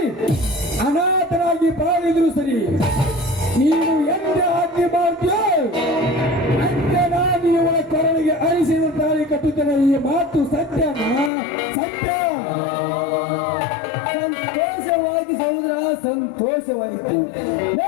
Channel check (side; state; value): right; drops out; at 11.3 s